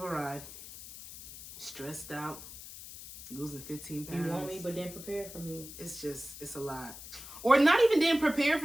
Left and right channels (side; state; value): left; noise; hiss, 13 dB below the sound